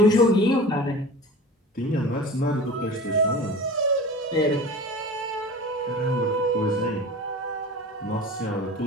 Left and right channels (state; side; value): normal; both; correlation 0.37